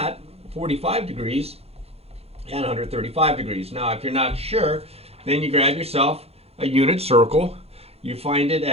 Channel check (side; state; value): left; late; 0.29 ms